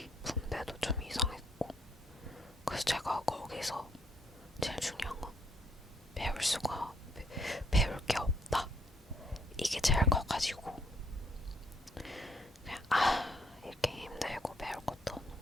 분배도 좀 이상했고 그래서 제가 거기서 제일 중요한 건 배울 게 없다. 이게 제일 커가지고 그냥 이렇게 힘들고 배울 것도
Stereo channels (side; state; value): both; normal; correlation 0.70